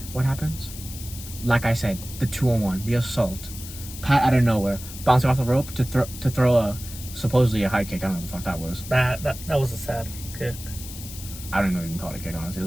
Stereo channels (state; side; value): noise; left; hiss, 13 dB below the sound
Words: What happens? Like I said, the 2-on-1, the assault. Pat out of nowhere, bouncing off the rope to throw a supposedly a high kick. I don't know what the fuck that was. That was a sad kick. I don't know if you can call it a kick, honestly. It